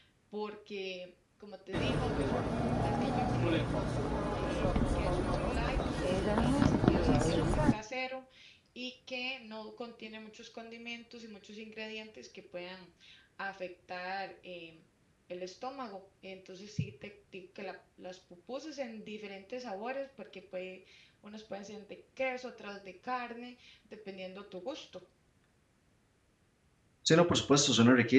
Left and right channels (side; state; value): both; identical; correlation 1.00